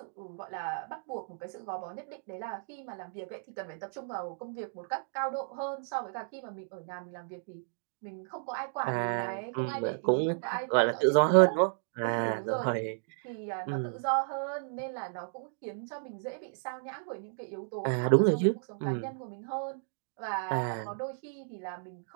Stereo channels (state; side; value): silent; left; digital silence